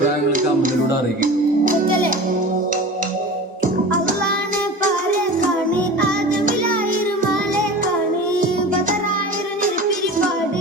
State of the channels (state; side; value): normal; both; correlation 0.34